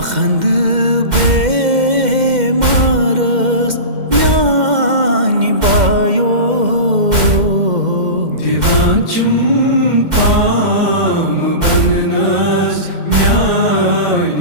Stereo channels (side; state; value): left; late; 2.1 ms